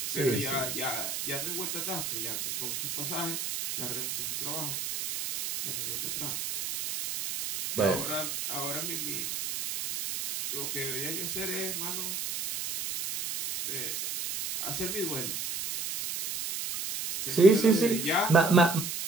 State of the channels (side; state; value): right; noise; hiss, 4 dB below the sound